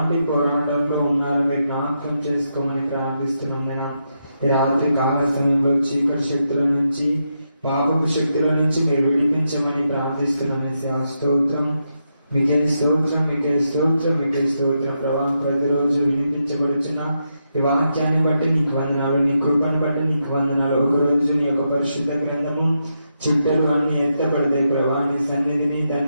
పోరాటంలో ఉన్నారో మీరు జ్ఞాపకం చేసుకోమని ప్రార్థిస్తున్నాం. నేను ఈ రాత్రి కాల సమయంలో చీకటి శక్తుల నుంచి, పాపపు శక్తుల నుంచి మీరు విడిపించమని ప్రార్థిస్తున్నాం. స్తోత్రం, మీకే స్తోత్రం, మీకే స్తోత్రం, మీకే స్తోత్రం ప్రభా. ప్రతిరోజు వినిపించబడుచున్న ఈ వాక్యాన్ని బట్టి నీకు వందనాలు, నీ కృపను బట్టి నీకు వందనాలు. ఒకరోజు నీ యొక్క పరిశుద్ధ గ్రంథము చుట్టలు అన్ని ఎత్తబడతాయి ప్రభా. నీ సన్నిధిని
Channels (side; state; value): both; inverted; correlation -0.83